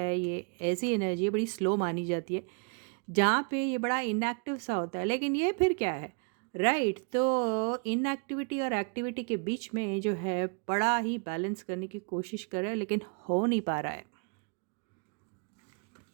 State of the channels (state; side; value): quieter; left; 38.8 dB